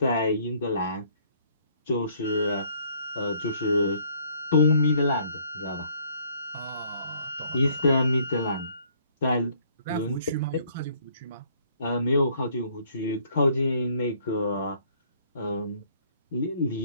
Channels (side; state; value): both; inverted; correlation -0.63